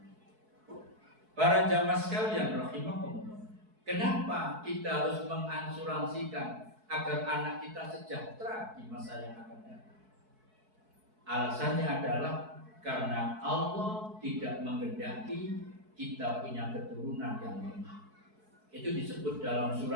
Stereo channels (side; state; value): left; late; 4.6 ms